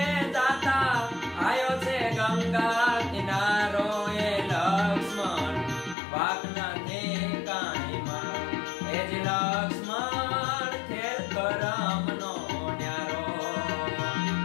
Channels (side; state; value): right; drops out; at 6.0 s